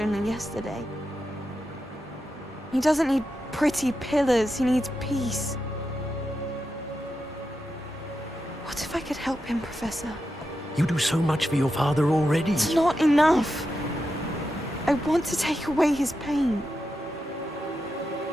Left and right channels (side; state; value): both; normal; correlation 0.88